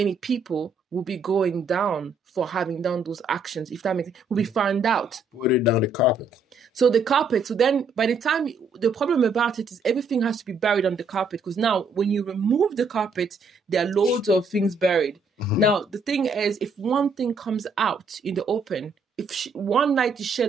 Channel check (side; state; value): left; quieter; 3.6 dB